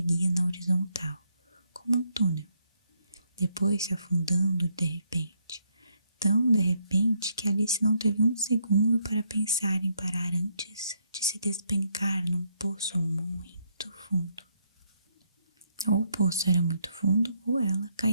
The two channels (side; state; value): both; inverted; correlation -0.75